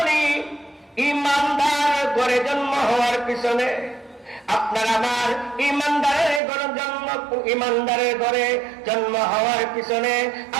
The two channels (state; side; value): drops out; left; at 6.4 s